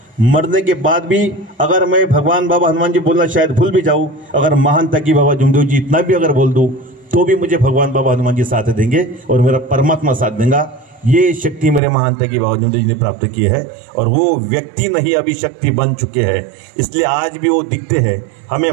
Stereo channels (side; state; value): left; drops out; at 11.8 s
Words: मरने के बाद भी अगर मैं भगवान बाबा हनुमान जी बोलना शायद भूल भी जाऊं, अगर महान तकी बाबा जुमदेव जी इतना भी अगर बोल दूं, तो भी मुझे भगवान बाबा हनुमान जी साथ देंगे और मेरा परमात्मा साथ देगा. ये शक्ति मेरे महान तकी बाबा जुमदेव जी ने प्राप्त की है, और वो व्यक्ति नहीं अभी शक्ति बन चुके हैं. इसलिए आज भी वो दिखते हैं, हमें